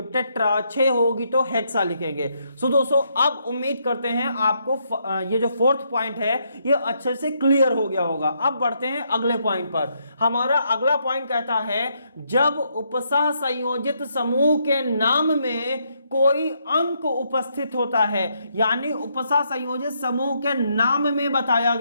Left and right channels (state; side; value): inverted; both; correlation -0.76